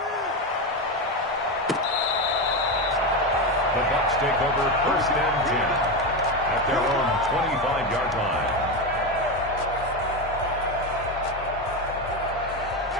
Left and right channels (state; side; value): normal; both; correlation 0.15